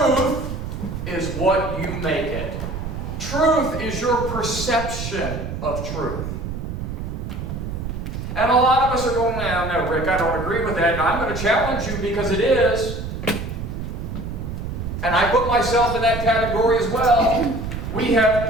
is what you make it. Truth is your perception of truth. And a lot of us are going, no, Rick, I don't agree with that. And I'm going to challenge you because it is. And I put myself in that category as well. We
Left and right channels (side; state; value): right; noise; rumble, 6 dB below the sound